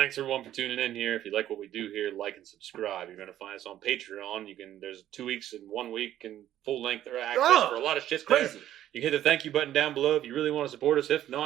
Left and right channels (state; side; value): quieter; left; 12.2 dB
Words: everyone for tuning in here. If you like what we do here, like and subscribe. You're going to find us on Patreon. There's 2 weeks and 1 week and full length access for a lot of shit there. Crazy. You can hit the thank you button down below if you really want to support us. If